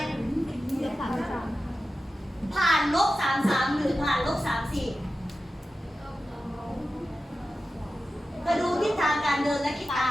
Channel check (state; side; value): normal; both; correlation 0.93